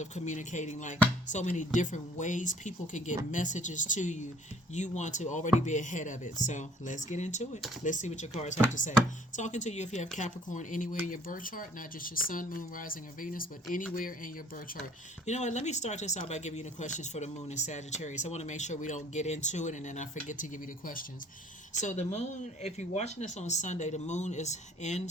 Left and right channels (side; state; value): both; normal; correlation 0.56